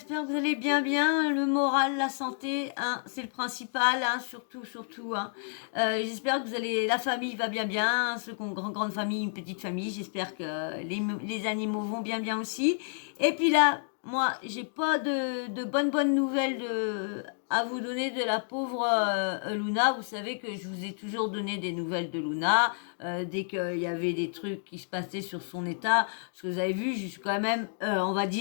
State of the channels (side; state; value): right; silent; digital silence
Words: que vous allez bien. Le moral, la santé, hein, c'est le principal, hein, surtout. Hein. J'espère que la famille va bien. Ceux qui ont une grande famille, une petite famille, j'espère que les animaux vont bien aussi. Et puis là, moi, j'ai pas de bonnes nouvelles à vous donner de la pauvre Luna. Vous savez que je vous ai toujours donné des nouvelles de Luna dès qu'il y avait des trucs qui se passaient sur son état. Parce que vous avez vu, je suis quand même, on va